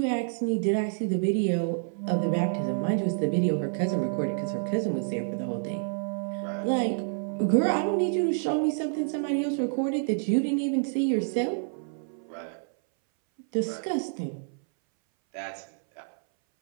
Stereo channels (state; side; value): silent; left; 59 dB below the other